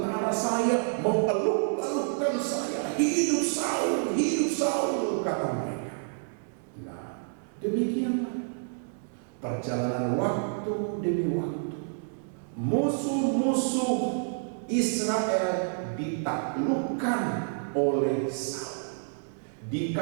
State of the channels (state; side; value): silent; left; 59 dB below the other